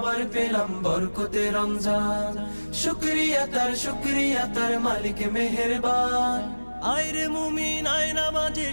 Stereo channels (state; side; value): inverted; both; correlation -1.00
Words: পেলাম বরকতে রমজান। শুকরিয়া তার মালিক মেহেরবান। আয়রে মুমিন আয় নামাজে,